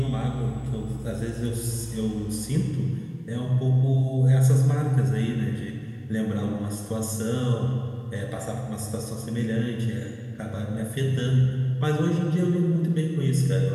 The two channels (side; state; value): both; identical; correlation 1.00